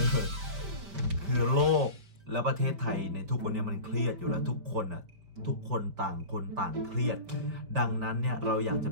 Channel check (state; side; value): late; left; 5.1 ms